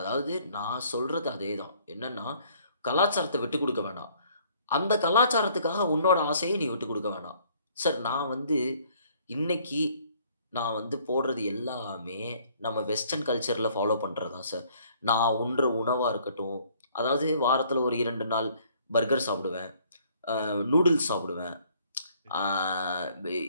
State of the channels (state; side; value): inverted; both; correlation -0.61